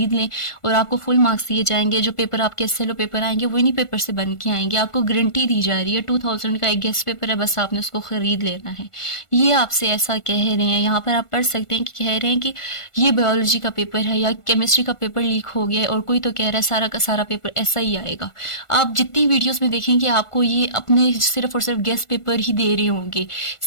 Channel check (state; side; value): late; right; 1.5 ms